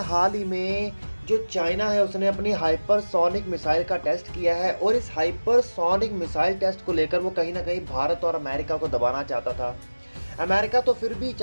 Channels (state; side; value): inverted; both; correlation -1.00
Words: ही में जो चाइना है उसने अपनी हाइपरसोनिक मिसाइल का टेस्ट किया है और इस हाइपरसोनिक मिसाइल टेस्ट को लेकर वो कहीं ना कहीं भारत और अमेरिका को दबाना चाहता था। अमेरिका तो फिर भी